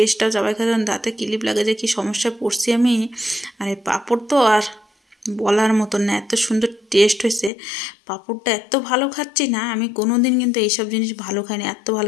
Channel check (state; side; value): drops out; right; at 7.5 s